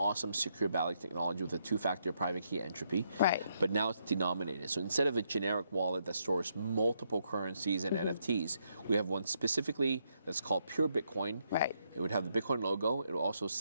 secure Ballet technology with a two-factor private key entropy. Right. But now it's denominated. So instead of a generic wallet that stores multiple currencies and NFTs, we have one specifically that's called pure Bitcoin. Right. It would have the Bitcoin logo. It will also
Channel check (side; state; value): both; inverted; correlation -0.77